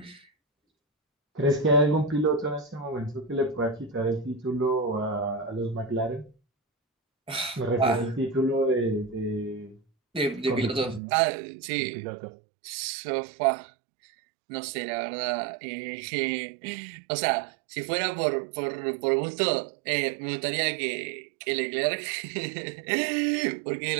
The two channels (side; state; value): left; drops out; at 11.0 s